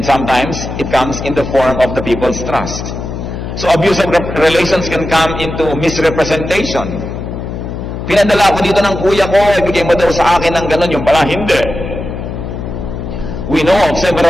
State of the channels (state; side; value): noise; left; hum, 7 dB below the sound